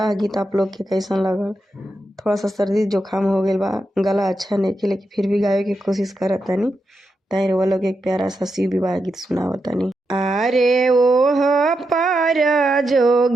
गीत आप लोग के कैसन लगल। थोड़ा सा सर्दी जुकाम हो गया बा, गला अच्छा नहीं कि लेकिन फिर भी गावे की कोशिश करत तनी। ताई वो लोग एक प्यारा सा शिव विवाह गीत सुनावत तनी। अरे ओह पर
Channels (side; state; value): both; normal; correlation 0.86